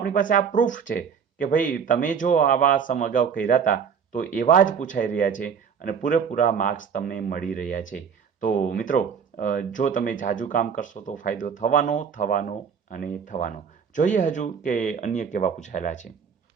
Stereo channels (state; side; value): quieter; left; 6.9 dB